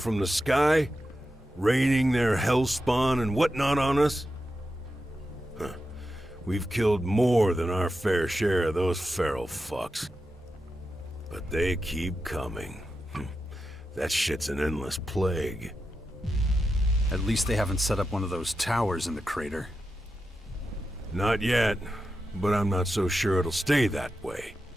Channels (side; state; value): both; normal; correlation 0.89